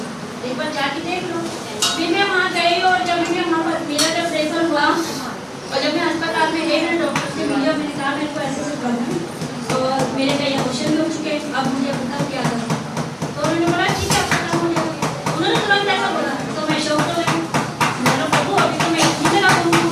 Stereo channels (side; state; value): both; identical; correlation 1.00